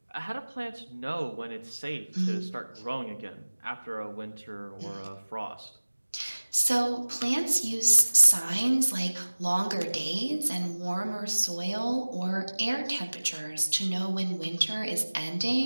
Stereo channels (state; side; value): inverted; both; correlation -1.00